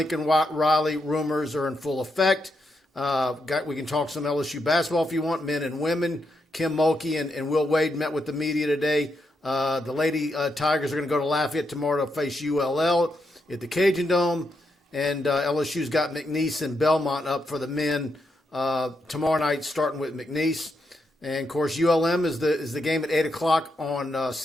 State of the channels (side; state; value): both; normal; correlation 0.82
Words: Riley rumors are in full effect. We can talk some LSU basketball if you want, men and women. Kim Mulkey and Will Wade met with the media today. The Lady Tigers are going to go to Lafayette tomorrow to face ULL at the Cajun Dome. And LSU's got McNeese and Belmont up for the men tomorrow night, starting with McNeese. And, of course, ULM is the game at 8 o'clock on